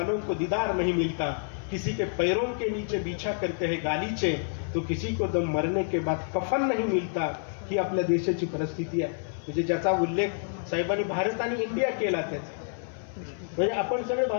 को दीदार नहीं मिलता. किसी के पैरों के नीचे बिछा करते हैं गालीचे, तो किसी को तो मरने के बाद कफन नहीं मिलता. ही आपल्या देशाची परिस्थिती आहे. म्हणजे ज्याचा उल्लेख साहेबांनी भारत आणि इंडिया केला. त्याचा म्हणजे आपण सगळे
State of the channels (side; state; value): right; silent; 59 dB below the other